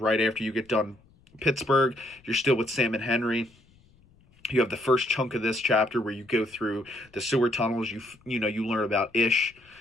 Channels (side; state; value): left; noise; rumble, 30 dB below the sound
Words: after you get done Pittsburgh. You're still with Sam and Henry. You have the first chunk of this chapter where you go through the sewer tunnels. You learn about Ish.